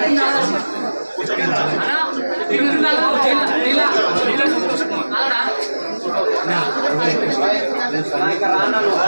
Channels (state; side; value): inverted; both; correlation -1.00